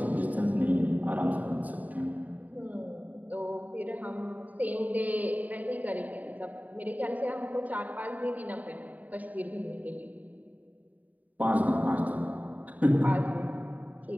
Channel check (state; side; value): late; left; 0.076 ms